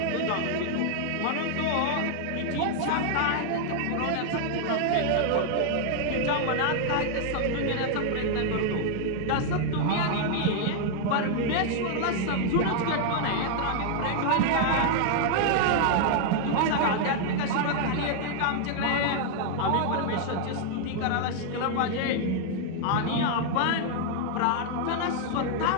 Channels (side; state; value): both; different; correlation 0.00